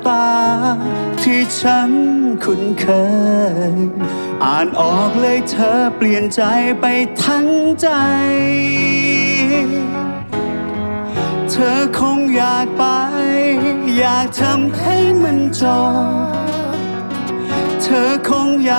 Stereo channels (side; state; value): both; inverted; correlation -1.00